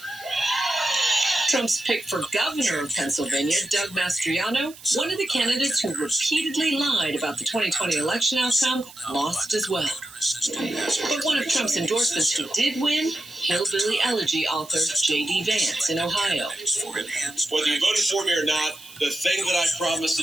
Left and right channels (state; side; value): noise; right; hiss, 19 dB below the sound